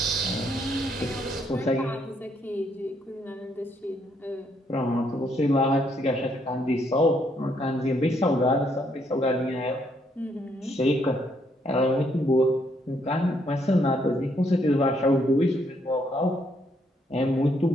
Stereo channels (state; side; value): normal; both; correlation 0.72